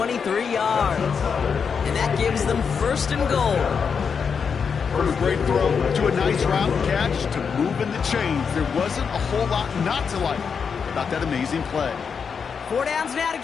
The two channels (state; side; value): quieter; right; 6.2 dB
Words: yards. And that gives them 1st and goal. From a great throw to a nice route catch to moving the chains, there wasn't a whole lot not to like about that amazing play. 4 downs now to